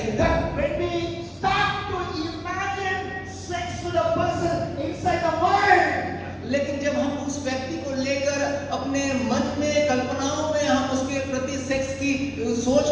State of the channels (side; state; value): both; identical; correlation 1.00